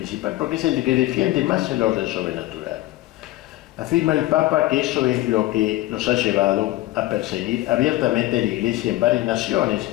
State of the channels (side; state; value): right; quieter; 17.1 dB